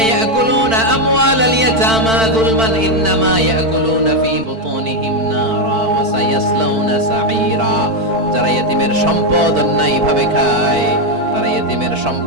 ইয়াকুলুনা আমওয়ালাল ইয়াতামা যুলমান ইন্নামা ইয়াকুলুনা ফী বুতুনিহিম নারা ওয়া সায়াসলাউনা সাঈরা। যারা এতিমের সম্পদ অন্যায় ভাবে খায়, তারা এতিমের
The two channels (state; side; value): late; left; 4.5 ms